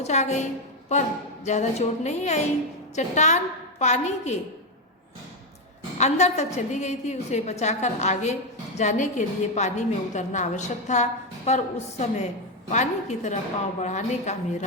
आ गई, पर ज़्यादा चोट नहीं आई। चट्टान पानी के अंदर तक चली गई थी। उसे बचाकर आगे जाने के लिए पानी में उतरना आवश्यक था, पर उस समय पानी की तरफ पांव बढ़ाने का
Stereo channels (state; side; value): normal; both; correlation 0.06